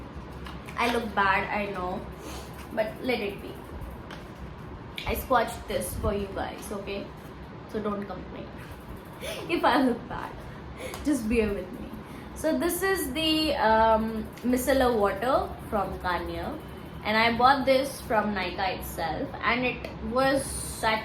I look bad, I know, but let it be. I swatched this for you guys, okay? So don't complain if I look bad. Just bear with me. So this is the micellar water from Garnier, and I bought this from Nykaa itself, and it was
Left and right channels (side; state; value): both; identical; correlation 1.00